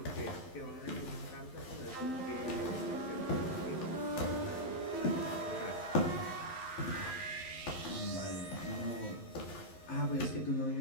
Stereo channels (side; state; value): right; late; 11 ms